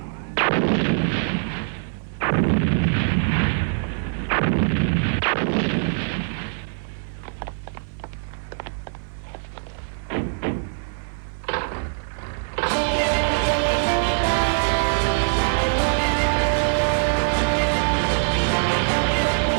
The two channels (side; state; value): left; silent; 58 dB below the other